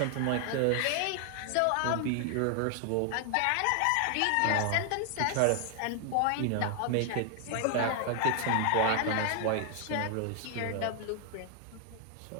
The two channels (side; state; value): both; different; correlation 0.00